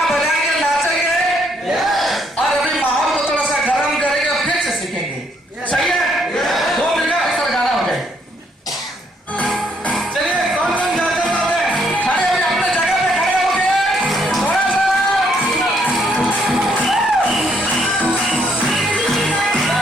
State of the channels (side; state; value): both; normal; correlation 0.71